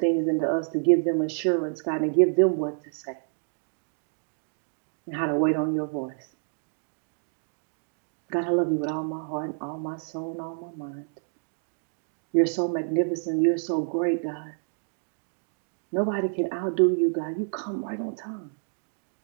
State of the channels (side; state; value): left; silent; 59 dB below the other